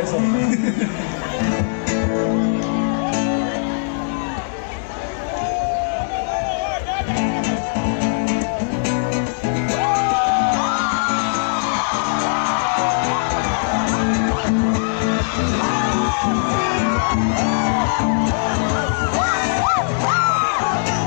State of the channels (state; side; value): silent; right; 66 dB below the other